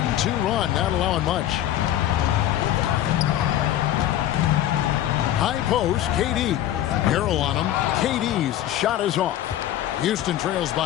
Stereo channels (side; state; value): right; quieter; 12.4 dB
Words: run, not allowing much. High post, KD. Harrell on him. KD's shot is off. Houston trails